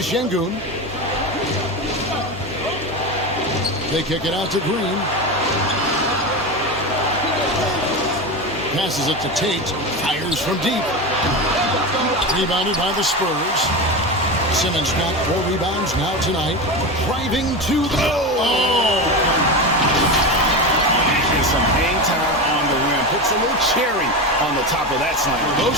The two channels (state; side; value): noise; left; hum, 23 dB below the sound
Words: They kick it out to Green. Passes it to Tate. Fires from deep. Rebounded by the Spurs. Simmons got 4 rebounds now tonight. Driving to the... Oh! And some hang time on the rim. Puts a little cherry on the top of that slam.